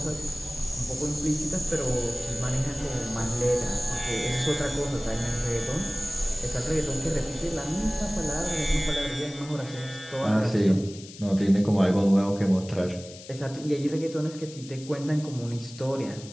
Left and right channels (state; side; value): noise; left; hiss, 17 dB below the sound